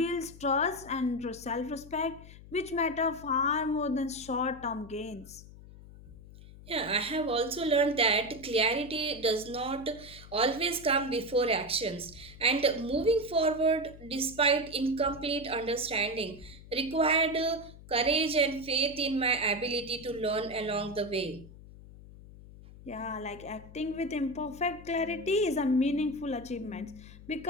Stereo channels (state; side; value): noise; left; hum, 18 dB below the sound